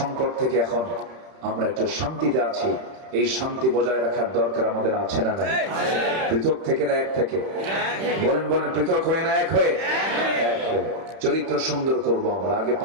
থেকে এখন আমরা একটু শান্তিতে আছি। এই শান্তি বজায় রাখার দরকার আমাদের আছে না নাই? পৃথক থেকে না এক থেকে? বলেন বলেন, পৃথক হয়ে না এক হয়ে? এক হয়ে। চরিত্র সুন্দর করবো আমরা। আগে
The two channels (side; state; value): left; late; 31 ms